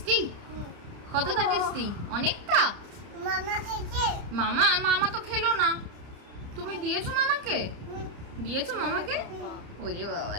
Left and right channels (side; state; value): left; late; 30 ms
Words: কতটা টেস্টি? অনেকটা। মামা খেয়েছে? মামা মামা তো খেলো না, তুমি দিয়েছো মামাকে? দিয়েছো মামাকে? ওরে